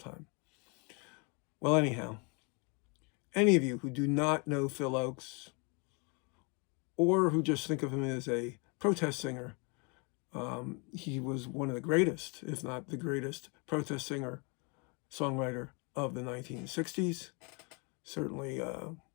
Well, anyhow, any of you who do not know Phil Ochs or who just think of him as a protest singer, he was one of the greatest, if not the greatest, protest singer, songwriter of the 1960s. Certainly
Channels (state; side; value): quieter; right; 32.9 dB